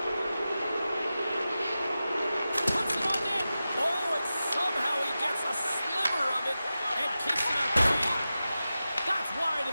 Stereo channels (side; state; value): both; inverted; correlation -0.94